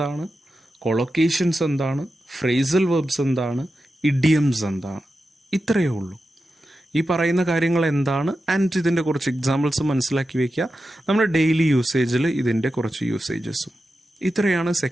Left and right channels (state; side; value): normal; both; correlation 0.91